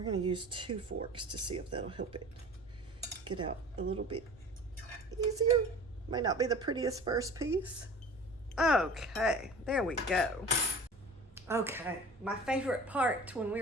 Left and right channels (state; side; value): normal; both; correlation 0.41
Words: gonna use 2 forks to see if that'll help it get out a little bit easier. Might not be the prettiest first piece. Okay, there we go. Okay, my favorite part when